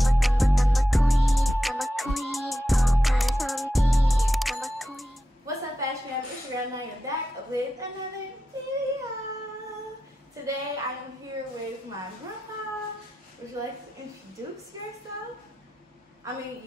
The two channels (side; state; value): both; normal; correlation 0.91